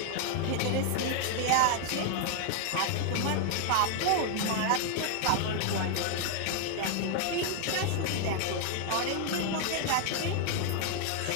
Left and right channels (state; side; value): different; both; correlation 0.00